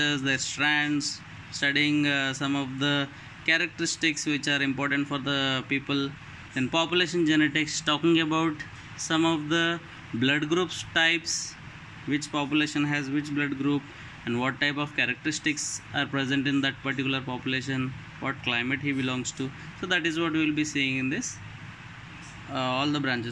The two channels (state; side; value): identical; both; correlation 1.00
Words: their strands, studying some of the characteristics which are important for the people. Then population genetics, talking about some of the blood groups types, which population has which blood group and what type of characteristics are present in that particular population, what climate he belongs to. So that is what we will be seeing in this all the